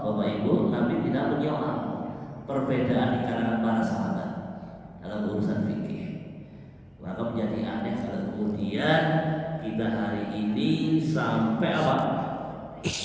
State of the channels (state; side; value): identical; both; correlation 1.00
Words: Bapak Ibu, Nabi tidak menyoal perbedaan di kalangan para sahabat dalam urusan fikih. Maka menjadi aneh kalau kemudian kita hari ini sampai apa?